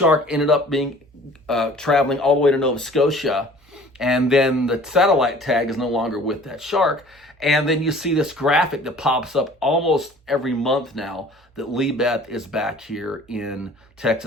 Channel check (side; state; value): both; normal; correlation 0.49